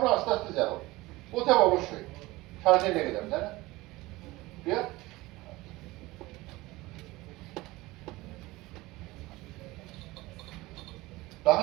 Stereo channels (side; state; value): left; quieter; 20.2 dB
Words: আস্তে আস্তে যাও, পৌঁছাবো অবশ্যই, সারাদিন লেগে যাবে, তাই না? ক্লিয়ার?